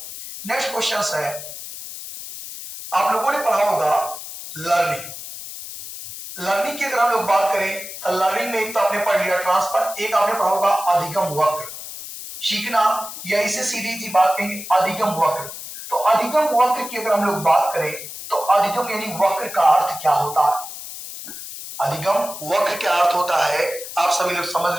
नेक्स्ट क्वेश्चन है, आप लोगों ने पढ़ा होगा लर्निंग। लर्निंग की अगर हम लोग बात करें तो लर्निंग में एक तो आपने पढ़ लिया ट्रांसफर, एक आपने पढ़ा होगा अधिगम वक्र। सीखना, या इसे सीधी सी बात कहेंगे अधिगम वक्र। तो अधिगम वक्र की अगर हम लोग बात करें तो अधिगम यानी वक्र का अर्थ क्या होता है? अधिगम वक्र क्या अर्थ होता है, आप सभी लोग समझ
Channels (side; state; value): left; noise; hiss, 11 dB below the sound